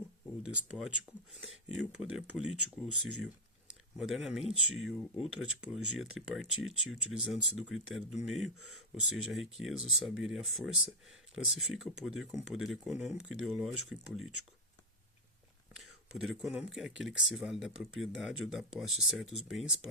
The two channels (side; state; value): both; normal; correlation 0.01